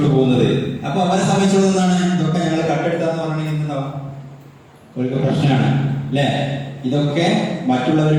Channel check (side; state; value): both; identical; correlation 1.00